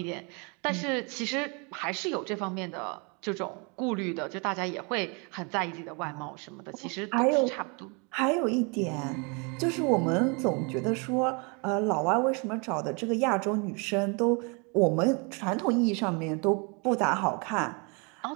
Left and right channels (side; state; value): left; quieter; 32.7 dB